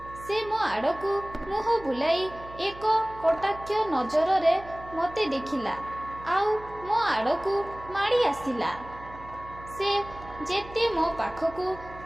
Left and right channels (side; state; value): right; noise; hum, 17 dB below the sound